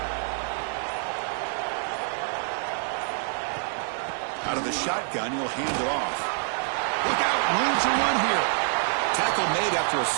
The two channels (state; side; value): silent; left; 60 dB below the other